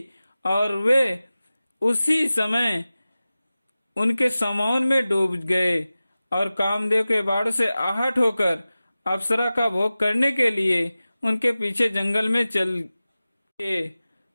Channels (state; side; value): inverted; both; correlation -0.96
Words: और वे उसी समय उनके समौन में डूब गए और कामदेव के बाड़ से आहट होकर अप्सरा का भोग करने के लिए उनके पीछे जंगल में चल गए।